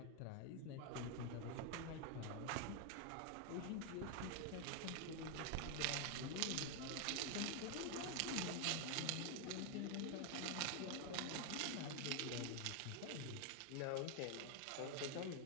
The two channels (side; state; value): both; different; correlation 0.01